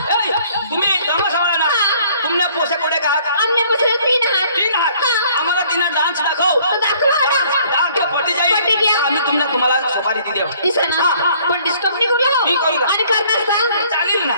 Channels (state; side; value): inverted; both; correlation -0.59